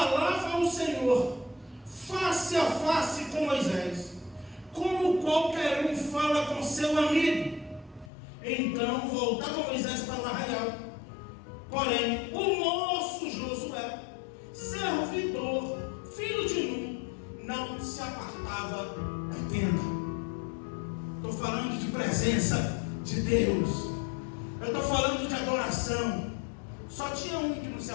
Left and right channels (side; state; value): right; drops out; at 8.1 s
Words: ao Senhor face a face com Moisés, como qualquer um fala com seu amigo. Então voltava Moisés para o arraial. Porém, o moço Josué, servidor, filho de Nun, não se apartava da tenda. Estou falando de presença de Deus. Eu estou falando de adoração. Só tinha um que não se